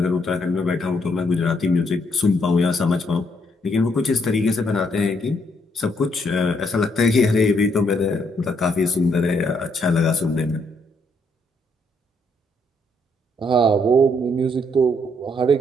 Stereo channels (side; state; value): both; normal; correlation 0.73